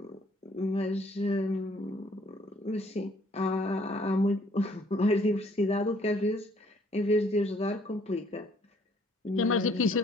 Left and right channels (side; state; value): both; normal; correlation 0.62